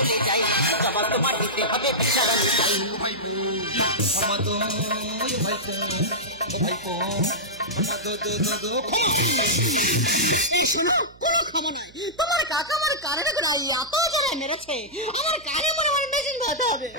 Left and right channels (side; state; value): right; noise; hum, 25 dB below the sound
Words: যাই, জবাব তোমার দিতে হবে জ্বালাতে চাই। ভাইপো ক্ষমা দো, ভাইপো ভাইপো ক্ষমা দো দো দো দো শোনো, কোনো ক্ষমা নাই। তোমার কাকা আমার কানের গোড়ায় এত জোরে মেরেছে, আমার কানে মনে হয় মেশিন ধরতে হবে।